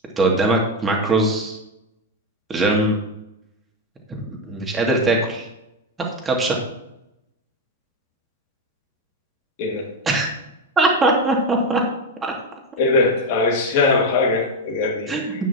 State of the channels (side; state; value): both; normal; correlation 0.09